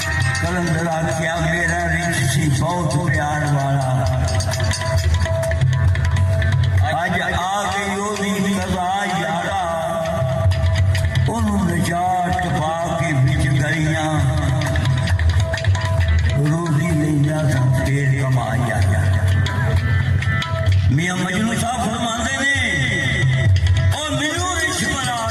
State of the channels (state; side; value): identical; both; correlation 1.00